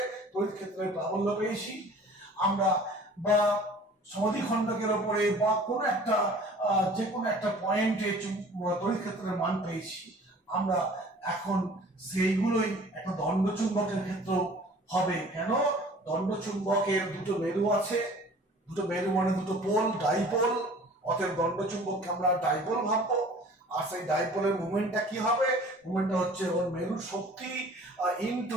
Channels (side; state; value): both; normal; correlation 0.48